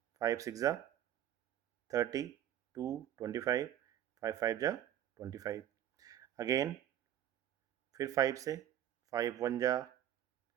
5 6 जा 30, 2 25, 5 5 जा 25। अगेन फिर 5 से, 5 1 जा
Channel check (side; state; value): left; quieter; 11.3 dB